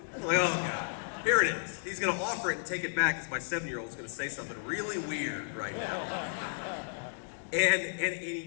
I'm like, oh, God. Here it is. He's going to offer it and take it back because my 7-year-old is going to say something really weird right now. And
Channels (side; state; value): right; silent; digital silence